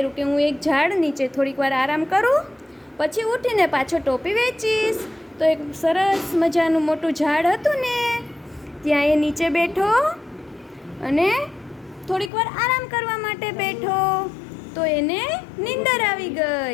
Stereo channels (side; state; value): right; drops out; at 12.3 s